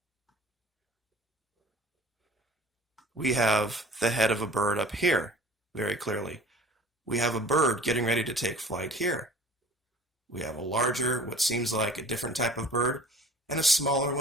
We have the head of a bird up here, very clearly. We have a bird getting ready to take flight here. We have a larger, what seems like a different type of bird, and a smaller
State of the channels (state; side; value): normal; both; correlation 0.47